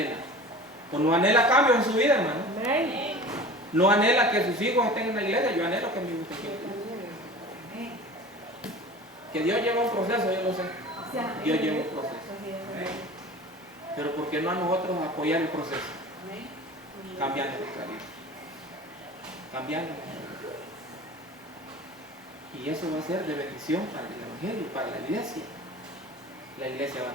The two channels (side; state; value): both; normal; correlation 0.39